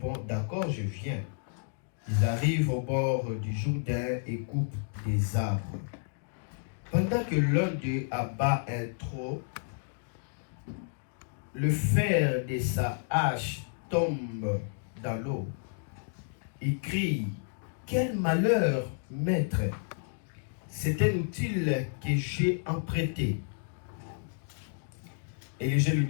d'accord, je viens. Ils arrivent au bord du Jourdain et coupent des arbres. Pendant que l'un d'eux abat un tronc, le fer de sa hache tombe dans l'eau. Il crie, quel malheur, maître! C'est un outil que j'ai emprunté. Élisée lui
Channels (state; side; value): silent; right; digital silence